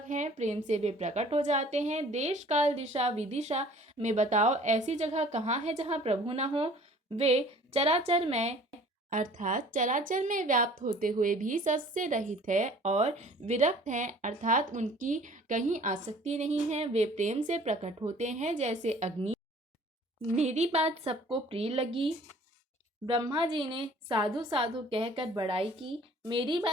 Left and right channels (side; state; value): both; normal; correlation 0.51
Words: हैं। प्रेम से वे प्रकट हो जाते हैं। देश काल दिशा विदिशा में बताओ ऐसी जगह कहाँ है जहाँ प्रभु न हो। वे चराचर में अर्थात चराचर में व्याप्त होते हुए भी सबसे रहित है और विरक्त हैं, अर्थात उनकी कहीं आसक्ति नहीं है। वे प्रेम से प्रकट होते हैं जैसे अग्नि। मेरी बात सबको प्रिय लगी। ब्रह्मा जी ने साधु साधु कहकर बड़ाई की। मेरी